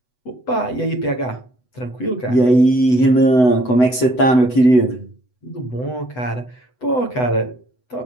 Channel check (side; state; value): right; late; 8.0 ms